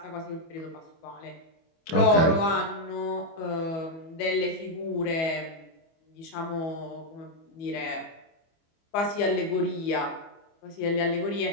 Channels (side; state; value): right; late; 25 ms